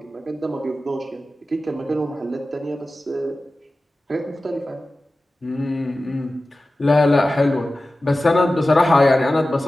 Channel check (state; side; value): normal; both; correlation 0.95